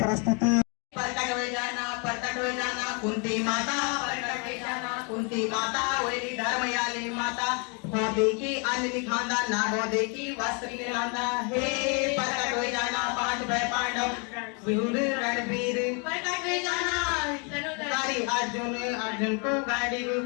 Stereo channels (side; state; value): right; quieter; 35.1 dB